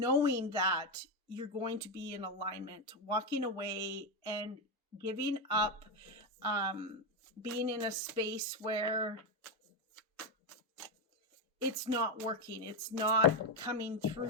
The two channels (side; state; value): both; normal; correlation 0.08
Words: that you're going to be in alignment, walking away and giving up, being in a space where it's not working, it's not coming